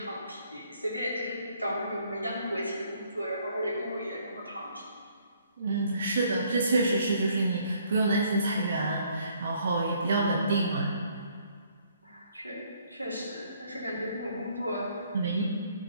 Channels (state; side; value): inverted; both; correlation -0.65